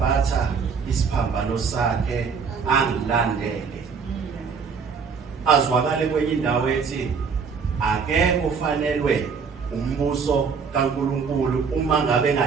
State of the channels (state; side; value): quieter; left; 5.7 dB